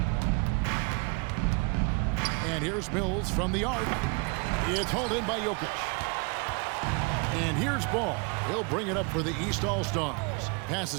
And here's Mills from the arc. It's hauled in by Jokic. And here's Ball. He'll bring it up for the East All-Stars.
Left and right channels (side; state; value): left; quieter; 31.1 dB